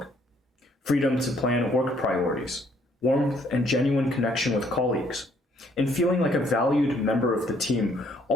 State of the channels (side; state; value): both; normal; correlation 0.66